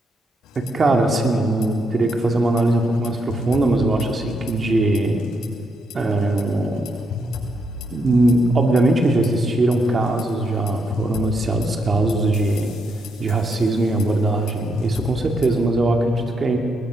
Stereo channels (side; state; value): both; normal; correlation 0.78